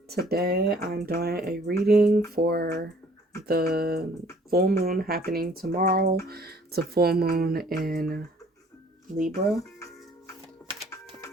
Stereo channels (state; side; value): normal; both; correlation 0.57